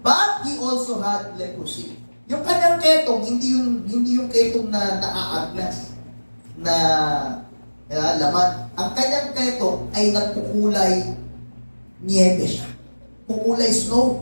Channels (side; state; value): both; inverted; correlation -1.00